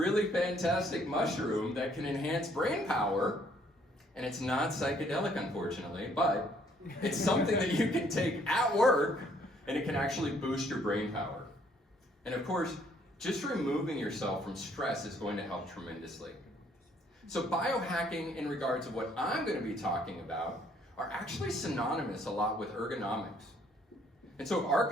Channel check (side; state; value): both; normal; correlation 0.65